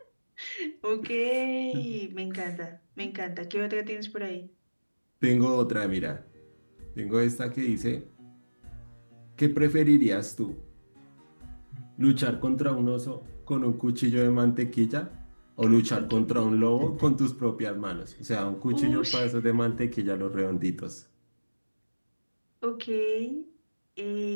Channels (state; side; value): inverted; both; correlation -1.00